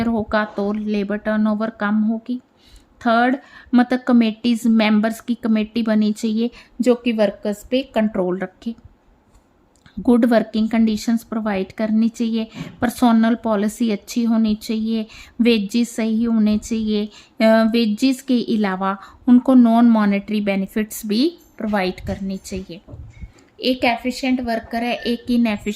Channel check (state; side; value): identical; both; correlation 1.00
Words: होगा तो लेबर टर्नओवर कम होगी। थर्ड, मतलब कमेटीज़, मेंबर्स की कमेटी बनी चाहिए जो कि वर्कर्स पे कंट्रोल रखे। गुड वर्किंग कंडीशंस प्रोवाइड करनी चाहिए, पर्सोनल पॉलिसी अच्छी होनी चाहिए, वेजेस सही होने चाहिए, वेजेस के अलावा उनको नॉन मॉनेटरी बेनिफिट्स भी प्रोवाइड करनी चाहिए। एक एफिशिएंट वर्कर है, एक